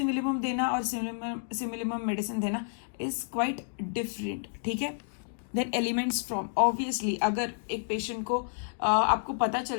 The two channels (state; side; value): silent; right; digital silence